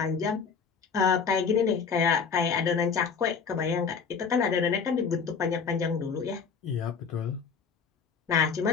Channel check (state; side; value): quieter; right; 5.8 dB